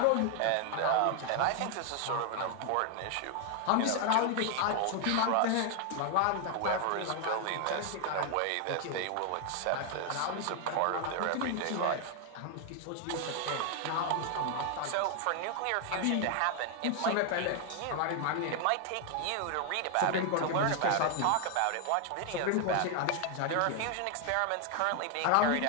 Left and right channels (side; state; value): both; different; correlation 0.00